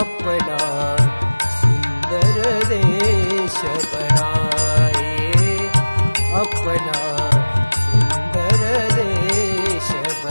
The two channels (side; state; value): both; inverted; correlation -1.00